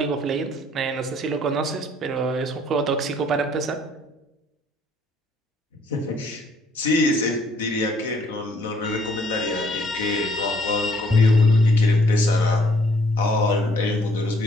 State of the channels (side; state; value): both; normal; correlation 0.63